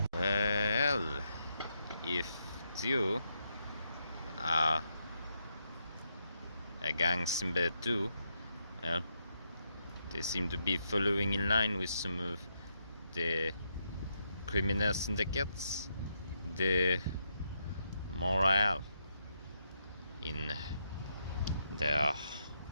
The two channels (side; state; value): both; inverted; correlation -0.81